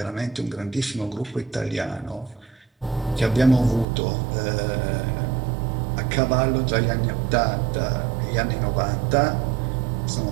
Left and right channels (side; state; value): left; drops out; at 3.9 s